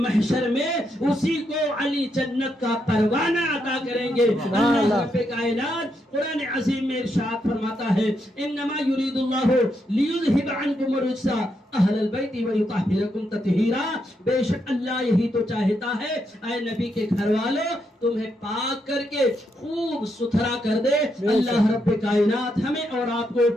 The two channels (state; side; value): normal; both; correlation 0.80